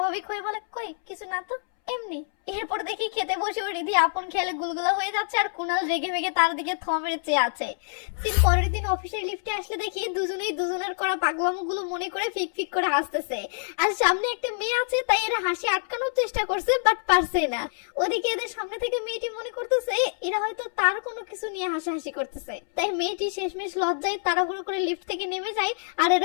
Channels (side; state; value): right; silent; 61 dB below the other